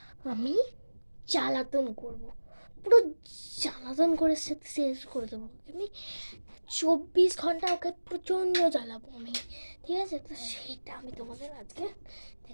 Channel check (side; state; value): both; inverted; correlation -1.00